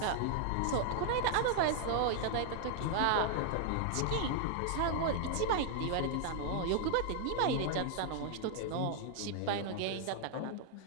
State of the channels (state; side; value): different; both; correlation 0.00